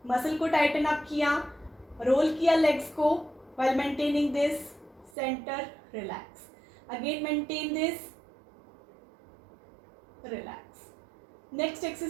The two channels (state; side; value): drops out; left; at 5.1 s